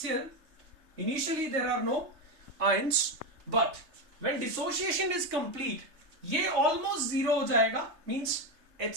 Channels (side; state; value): left; late; 3.3 ms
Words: initially there are no ions, but when dissociation is complete, ये almost zero हो जाएगा, means